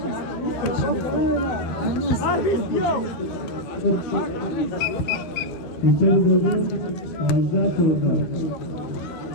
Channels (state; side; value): late; right; 12 ms